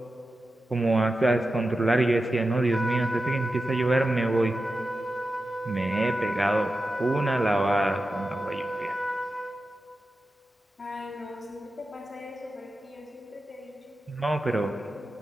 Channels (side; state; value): both; normal; correlation 0.92